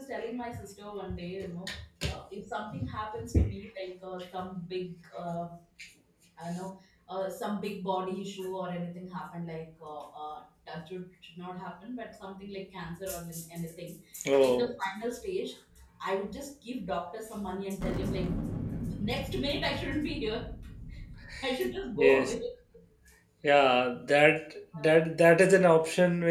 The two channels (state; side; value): identical; both; correlation 1.00